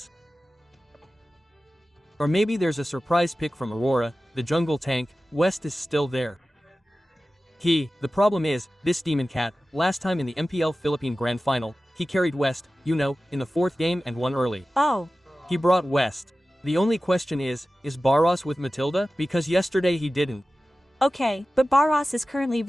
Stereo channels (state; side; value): normal; both; correlation 0.95